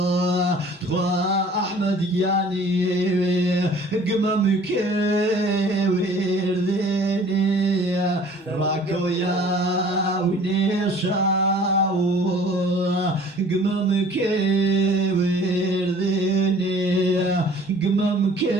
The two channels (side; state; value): both; normal; correlation 0.50